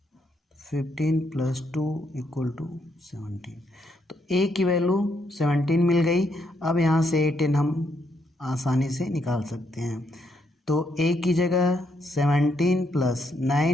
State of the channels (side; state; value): both; normal; correlation 0.76